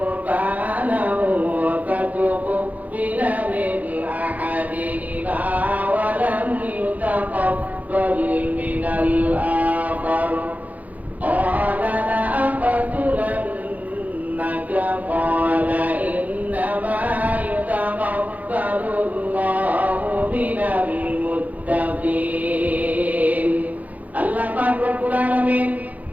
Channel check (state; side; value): late; left; 0.077 ms